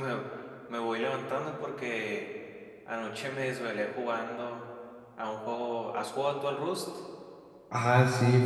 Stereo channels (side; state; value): both; identical; correlation 1.00